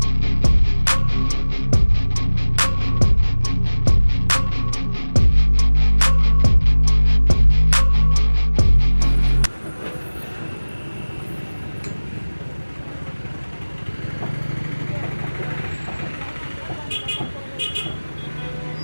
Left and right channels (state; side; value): inverted; both; correlation -1.00